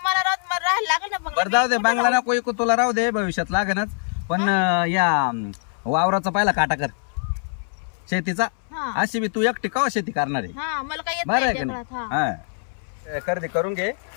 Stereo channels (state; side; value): silent; right; 63 dB below the other